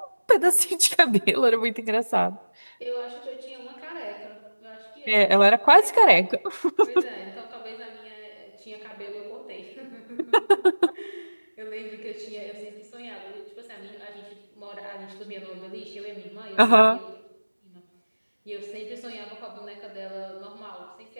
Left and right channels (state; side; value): inverted; both; correlation -1.00